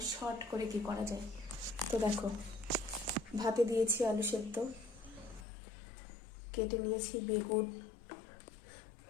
শর্ট করে কি করা যায়। তো দেখো, ভাতে দিয়েছি আলু সেদ্ধ, কেটে নিয়েছি বেগুন,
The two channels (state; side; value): drops out; right; at 5.5 s